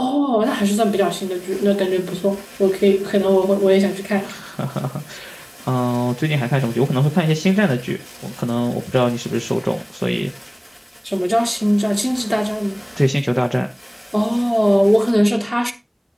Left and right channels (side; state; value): both; identical; correlation 1.00